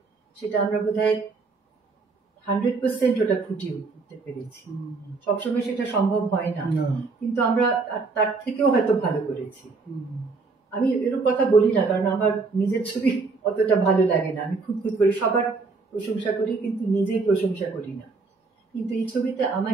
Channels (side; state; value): left; quieter; 4.2 dB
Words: সেটা আমরা বোধহয় 100% ওটা ফুটিয়ে উঠতে পেরেছি। সবসময় সেটা সম্ভব হয় না, কিন্তু আমরা তার থেকেও হয়তো ভালো করেছি। আমি এরকম কথা বলি না, কারণ আমার নিজের ছবি অতটা ভালো লাগে না, আমি খুব করে সবার প্রশংসা করি কিন্তু নিজেই প্রশংসা করি না। কিন্তু এই ছবিতে